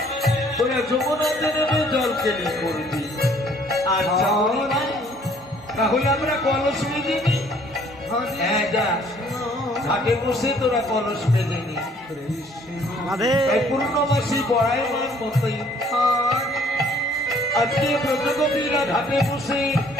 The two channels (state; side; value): normal; both; correlation 0.60